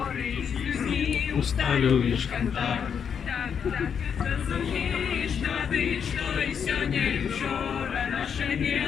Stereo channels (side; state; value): right; quieter; 7.4 dB